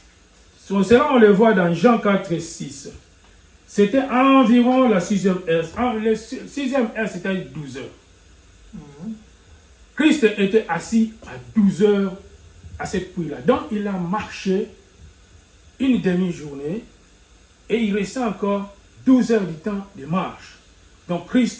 Cela, on le voit dans Jean 4, 6. C'était environ la 6e heure. La 6e heure, c'était 12 heures. Christ était assis à 12 heures à cette puits-là. Donc, il a marché une demi-journée et il restait encore 12 heures du temps de marche. Donc,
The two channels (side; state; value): both; identical; correlation 1.00